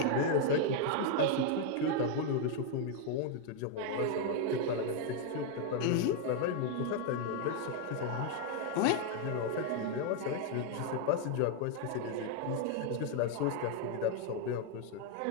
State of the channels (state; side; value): different; both; correlation 0.00